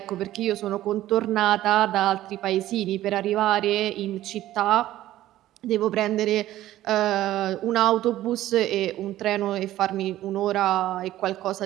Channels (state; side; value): quieter; left; 14.3 dB